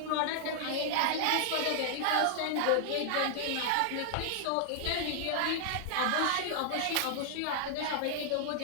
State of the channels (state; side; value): different; both; correlation -0.01